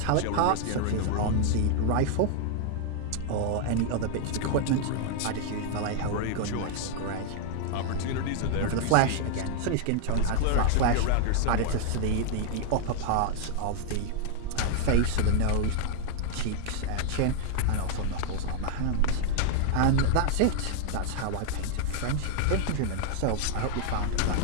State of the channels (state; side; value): different; both; correlation 0.00